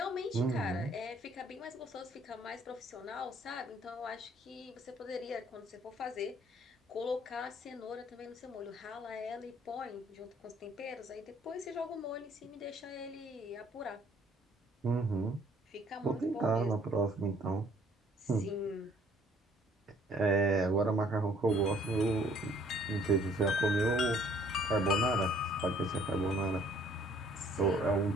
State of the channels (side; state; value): both; normal; correlation 0.60